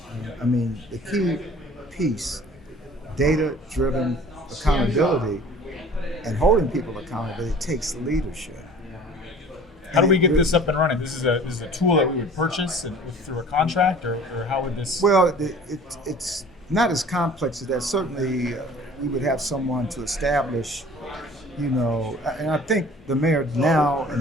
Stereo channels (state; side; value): normal; both; correlation 0.47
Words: I mean, the key piece, data-driven accountability and holding people accountable, it takes leadership. How do we get this up and running? This is a tool that we would purchase through a contract, or how would this? Well, it's not as complex as that. Certainly, we would have someone to establish, and I think the mayor now